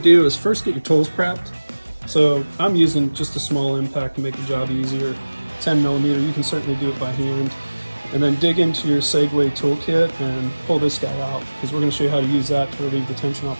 is first get your tools prepped. So I'm using just a small impact to make the job easier, 10 millimeter, you can certainly do it by hand. And then dig into your Segway toolkit and pull this guy out, because we're gonna show you how to use that to relieve the tension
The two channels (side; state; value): both; inverted; correlation -1.00